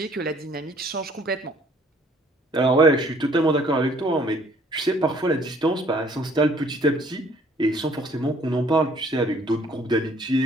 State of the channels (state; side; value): normal; both; correlation 0.59